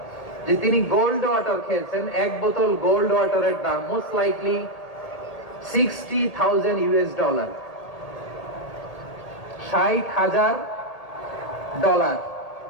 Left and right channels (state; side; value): late; right; 1.8 ms